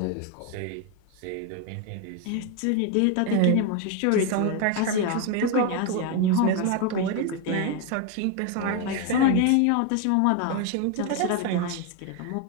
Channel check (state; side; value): different; both; correlation 0.02